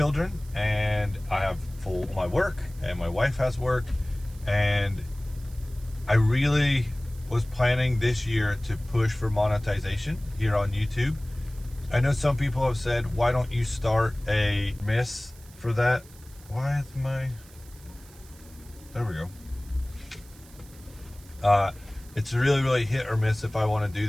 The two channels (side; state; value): right; noise; hiss, 23 dB below the sound